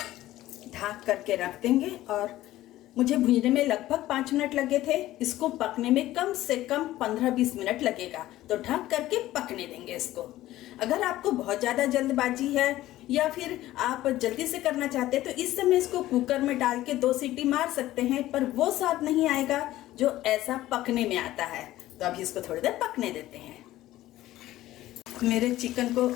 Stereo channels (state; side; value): quieter; right; 15.3 dB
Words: ढक करके रख देंगे। और मुझे भूनने में लगभग 5 मिनट लगे थे, इसको पकने में कम से कम 15-20 मिनट लगेगा। तो ढक करके पकने देंगे इसको। अगर आपको बहुत ज़्यादा जल्दबाजी है या फिर आप जल्दी से करना चाहते हैं तो इस समय इसको कुकर में डाल के 2 सीटी मार सकते हैं, पर वो स्वाद नहीं आएगा जो ऐसा पकने में आता है। तो अभी इसको थोड़ी देर पकने देते हैं। मेरे चिकन को